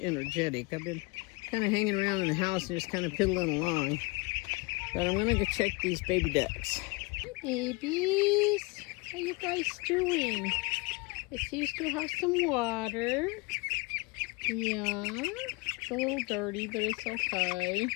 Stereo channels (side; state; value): right; quieter; 26.5 dB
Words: energetic. I've been kind of hanging around in the house and just kind of piddling along. But I'm gonna go check these baby ducks. Hi babies, how you guys doing? I see you still have some water. Yeah, it's a little dirty, but it's okay.